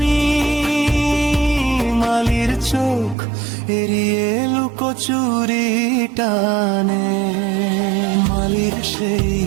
মালির চোখ এড়িয়ে লুকোচুরি টানে। মালির সেই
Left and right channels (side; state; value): left; drops out; at 3.2 s